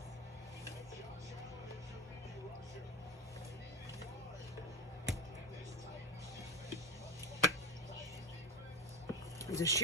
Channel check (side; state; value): both; normal; correlation 0.19